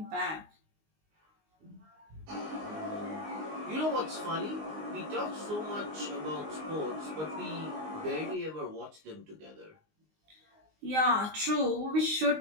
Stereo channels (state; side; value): late; left; 19 ms